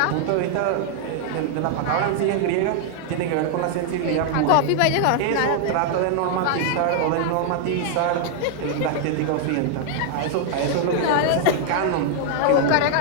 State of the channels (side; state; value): both; different; correlation 0.00